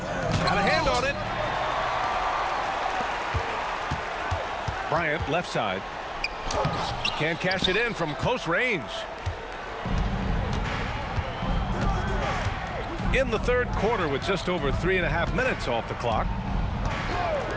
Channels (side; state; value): both; identical; correlation 1.00